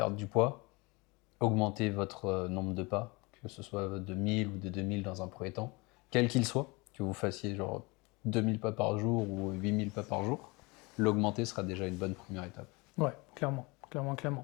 du poids, augmentez votre nombre de pas, que ce soit de 1000 ou de 2000 dans un premier temps, quel qu'il soit, que vous fassiez genre 2000 pas par jour ou 8000 pas par jour, l'augmenter sera déjà une bonne première étape. Ouais, clairement, clairement,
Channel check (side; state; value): right; quieter; 26.0 dB